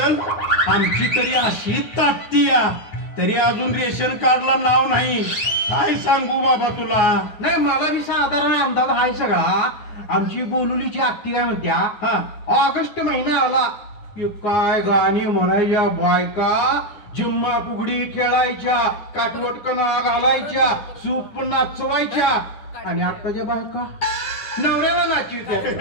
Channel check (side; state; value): right; late; 9.6 ms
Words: आमची तरी अशी ताटती तरी अजून रेशन कार्डला नाव नाही. काय सांगू बाबा तुला. नाही मला बी साधारण अंदाज आहे सगळा. आमची बोलुलीची आत्ती काय म्हणत्या, हा ऑगस्ट महिना आला की काय गाणी म्हणायच्या बायका, जिम्मा फुगडी खेळायच्या, काटवटकना घालायच्या, सूप नाचवायच्या. आणि आताच्या बायका नवऱ्याला नाचीत्या.